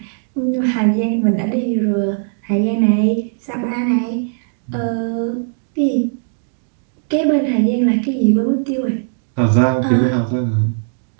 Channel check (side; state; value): left; silent; digital silence